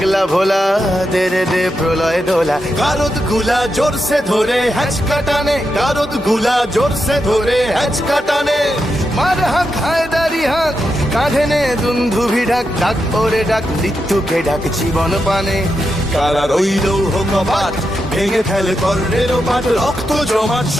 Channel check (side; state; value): both; normal; correlation 0.86